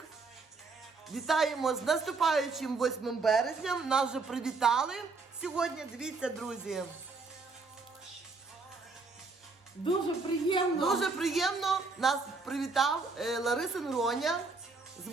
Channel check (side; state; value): left; quieter; 4.1 dB